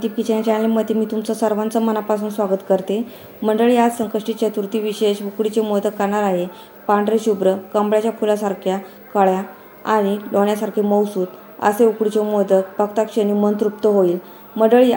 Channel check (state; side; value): identical; both; correlation 1.00